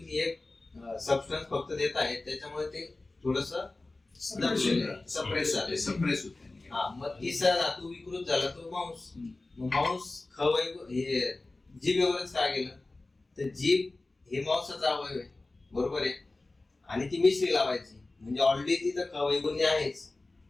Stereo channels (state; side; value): quieter; right; 3.1 dB